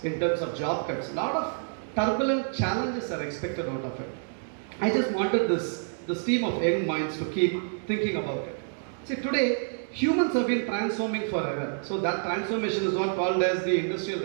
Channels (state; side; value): silent; left; digital silence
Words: in terms of job cuts. A lot of turbulent challenges are expected out of it. I just wanted this team of young minds to keep thinking about it. See, today, humans have been transforming forever. So that transformation is what called as the industrial